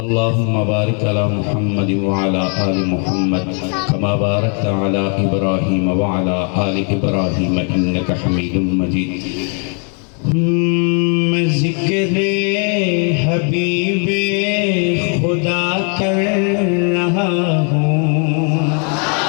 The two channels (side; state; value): right; quieter; 39.7 dB